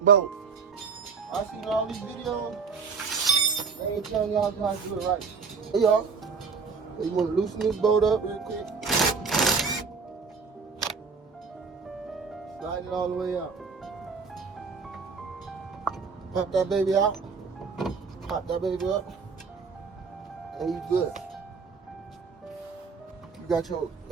bolt. I seen all these videos. They ain't telling y'all how to do it right. Hey y'all. You want to loosen this bolt up real quick. Slide it all the way out. Pop that baby out. Pop that baby up. And you good. You got your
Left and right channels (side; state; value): left; quieter; 5.2 dB